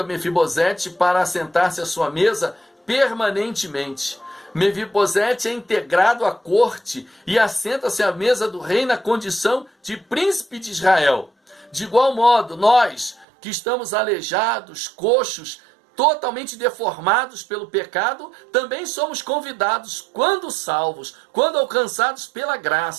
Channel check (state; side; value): drops out; left; at 13.2 s